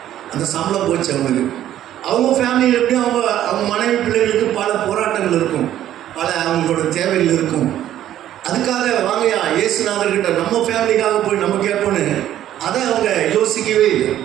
அந்த சம்பளம் போச்சு அவங்களுக்கு. அவங்க ஃபேமிலியில் எப்படி அவங்க மனைவி பிள்ளைகளுக்கு பல போராட்டங்கள் இருக்கும், பல அவங்களோட தேவைகள் இருக்கும். அதுக்காக வாங்கயா இயேசுநாதர்கிட்ட நம்ம ஃபேமிலிக்காக போய் நம்ம கேட்போன்னு அதை அவங்க யோசிக்கவே இல்லை.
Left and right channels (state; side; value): quieter; left; 12.0 dB